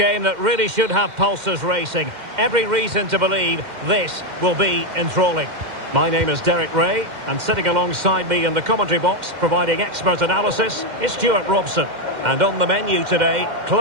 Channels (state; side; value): late; left; 2.1 ms